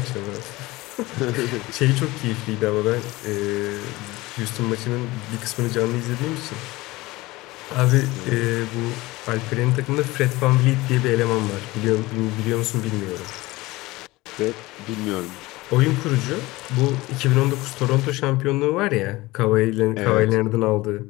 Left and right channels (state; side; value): quieter; right; 20.3 dB